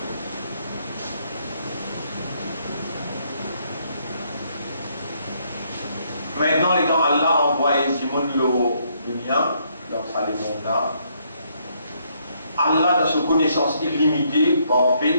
Maintenant, les gens, Allah a envoyé Simon le mien, dans sa là. Allah, dans sa connaissance illimitée,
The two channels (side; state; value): both; inverted; correlation -0.71